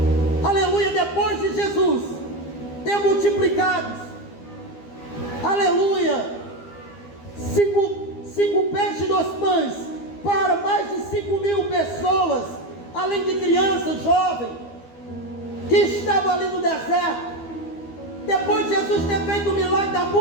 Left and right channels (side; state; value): right; late; 12 ms